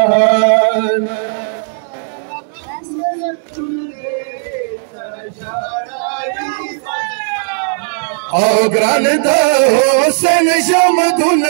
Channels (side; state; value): left; silent; 68 dB below the other